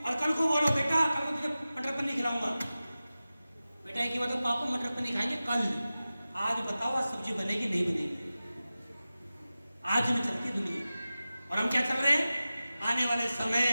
और कल को बोलो बेटा कल को तुझे मटर पनीर खिलाऊंगा, बेटा एक ही बात, पापा मटर पनीर खाएंगे कल, आज बताओ आज सब्जी बनेगी नहीं बनेगी? आज में चलती है दुनिया और हम क्या चल रहे हैं आने वाले समय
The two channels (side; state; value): both; inverted; correlation -0.95